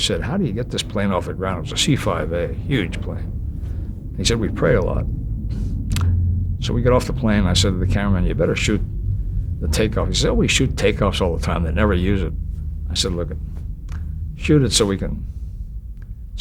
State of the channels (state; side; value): identical; both; correlation 1.00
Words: "How do you get this plane off the ground?" It was a C-5A, huge plane. He said, "We pray a lot." So we got off the plane. I said to the cameraman, "You better shoot the takeoff." He said, "Oh, we shoot takeoffs all the time. They never use it." I said, "Look, shoot it so we can